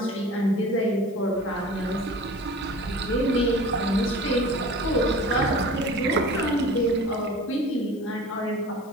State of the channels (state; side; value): noise; left; hiss, 27 dB below the sound